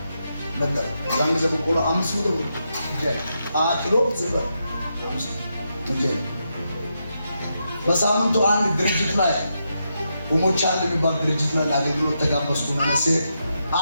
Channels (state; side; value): inverted; both; correlation -0.84